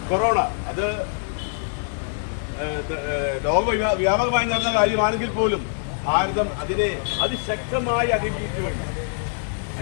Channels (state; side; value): silent; right; 63 dB below the other